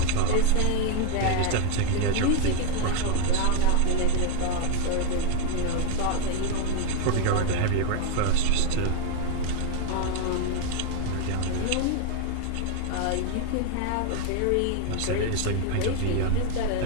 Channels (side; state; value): both; different; correlation 0.01